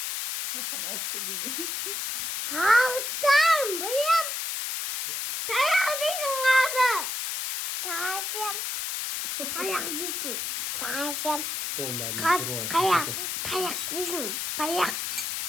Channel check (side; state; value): left; noise; hiss, 3 dB below the sound